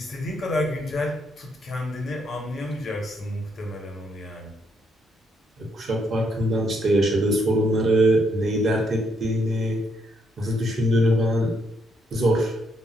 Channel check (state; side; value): normal; both; correlation 0.74